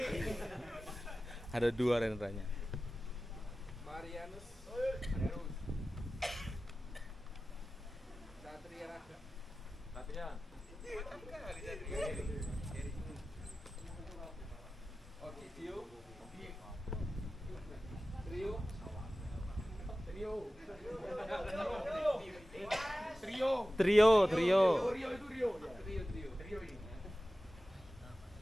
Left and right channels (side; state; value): both; normal; correlation 0.95